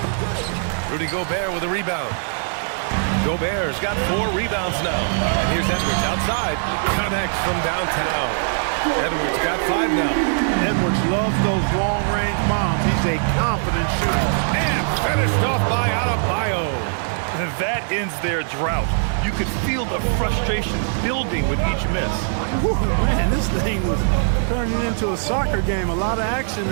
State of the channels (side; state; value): left; silent; 65 dB below the other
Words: Rudy Gobert with a rebound. Gobert's got 4 rebounds now. And here's Edwards outside. Connects from downtown. Edwards got 5 now. Edwards loves those long-range bombs. He's a confident shooter. And finished off by Adebayo. And that ends their drought. You could feel the frustration building with each miss. Whew, man, this thing was turning into a soccer game. A lot of action